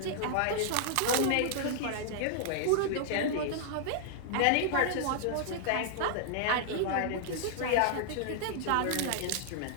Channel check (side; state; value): both; different; correlation -0.01